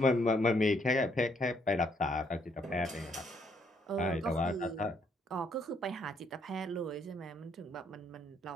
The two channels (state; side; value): normal; both; correlation 0.71